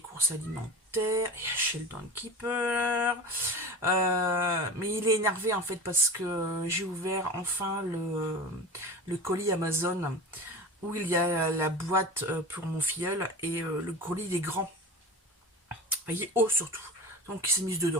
courses alimentaires. Il y a Sheldon qui pleure. Mais il est énervé en fait parce que j'ai ouvert enfin le colis Amazon où il y a la boîte pour mon filleul et le colis il est grand. Il est haut surtout. Donc il s'est mis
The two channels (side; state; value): both; normal; correlation 0.31